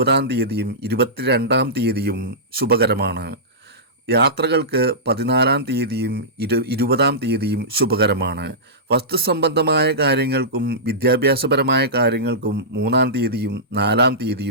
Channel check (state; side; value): normal; both; correlation -0.17